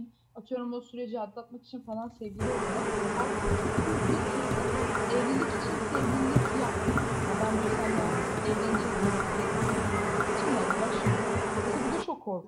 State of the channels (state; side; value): identical; both; correlation 1.00